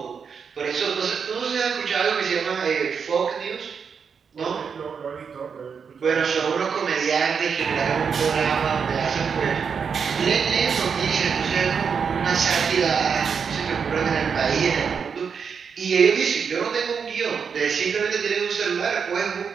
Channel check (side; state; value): left; quieter; 6.3 dB